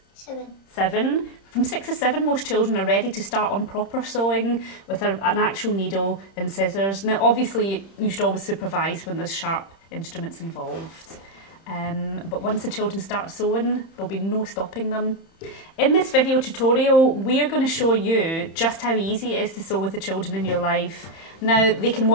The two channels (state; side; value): late; right; 30 ms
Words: 7. From 6 or 7, most children are ready to start on proper sewing with an actual needle and scissors. Now, obviously, you should always supervise when there's sharp instruments involved. But once the children start sewing, there'll be no stopping them. In this video tutorial, we're going to show you just how easy it is to sew with the children in your life. Now, they can